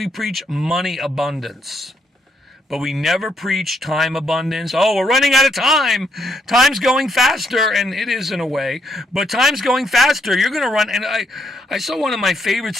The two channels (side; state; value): both; normal; correlation 0.75